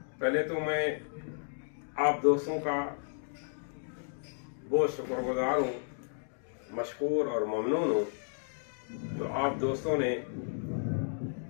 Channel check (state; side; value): silent; right; digital silence